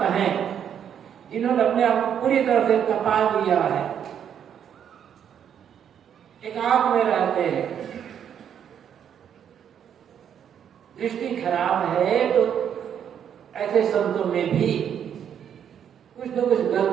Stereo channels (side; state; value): left; quieter; 8.8 dB